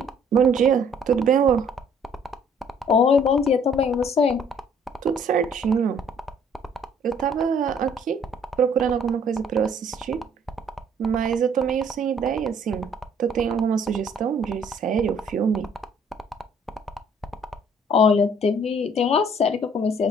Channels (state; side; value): normal; both; correlation 0.59